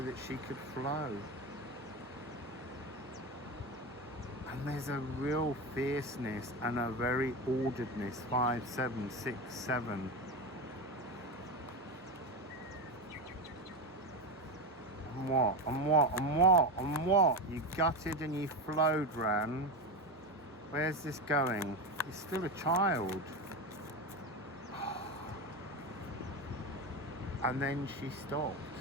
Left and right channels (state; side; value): normal; both; correlation 0.18